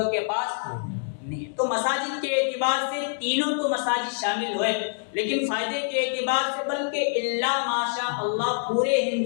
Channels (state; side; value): silent; right; digital silence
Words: کے پاس نہیں۔ تو مساجد کے اعتبار سے تینوں تو مساجد شامل ہوئے، لیکن فائدے کے اعتبار سے بلکہ الا ماشاء اللہ پورے